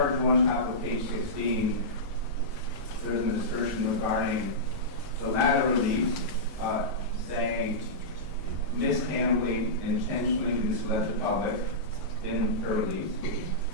1, top of page 16, there's an assertion regarding the latter release, saying Ms. Hambley intentionally misled the public in her release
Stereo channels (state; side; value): normal; both; correlation -0.15